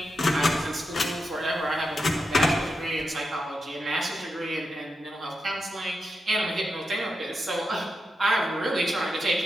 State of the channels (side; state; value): both; normal; correlation 0.87